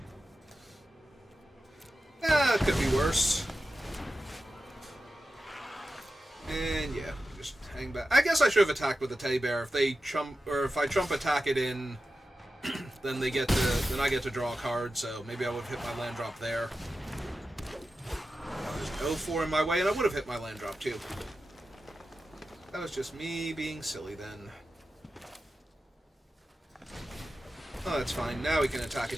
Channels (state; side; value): normal; both; correlation 0.92